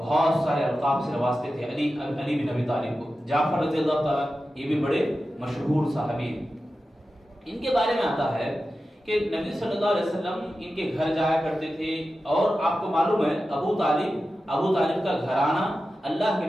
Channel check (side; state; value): both; normal; correlation 0.93